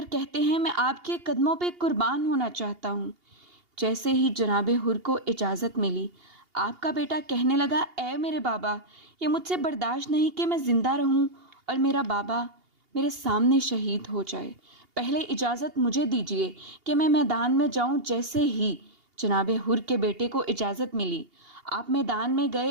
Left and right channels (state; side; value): late; left; 2.8 ms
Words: کہتے ہیں میں آپ کے قدموں پہ قربان ہونا چاہتا ہوں۔ جیسے ہی جناب حر کو اجازت ملی، آپ کا بیٹا کہنے لگا اے میرے بابا، یہ مجھ سے برداشت نہیں کہ میں زندہ رہوں اور میرا بابا میرے سامنے شہید ہو جائے، پہلے اجازت مجھے دیجیے کہ میں میدان میں جاؤں۔ جیسے ہی جناب حر کے بیٹے کو اجازت ملی، آپ میدان میں گئے